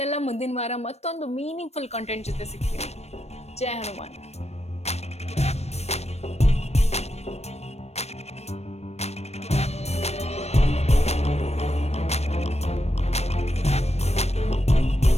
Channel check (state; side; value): late; right; 0.31 ms